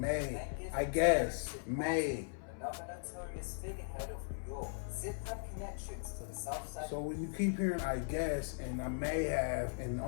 then given I to guess. Zip May. another notorious figurehead of New York. Zip had connections to the South Side. So when you keep hearing I guess and I may have and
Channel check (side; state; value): right; silent; 52 dB below the other